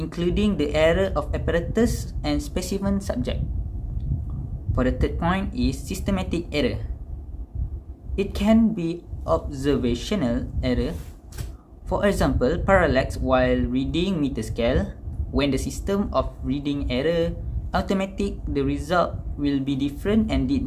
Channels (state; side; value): identical; both; correlation 1.00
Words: the error of apparatus and specimen subject. For the third point is systematic error. It can be observational error. For example, parallax while reading meter scale. When the system of reading error automatic, the result will be different and did